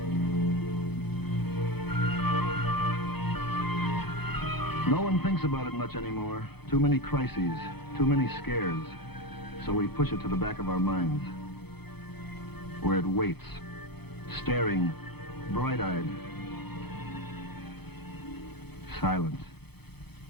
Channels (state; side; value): late; right; 0.98 ms